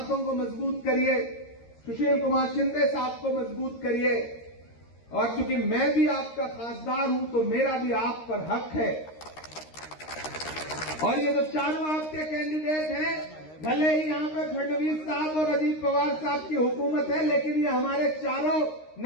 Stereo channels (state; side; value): late; right; 13 ms